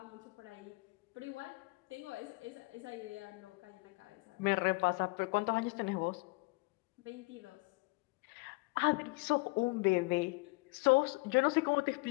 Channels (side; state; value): right; quieter; 26.5 dB